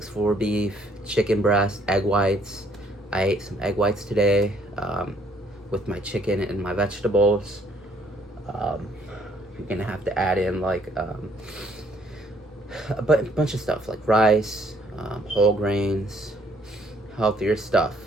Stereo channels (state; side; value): normal; both; correlation 0.65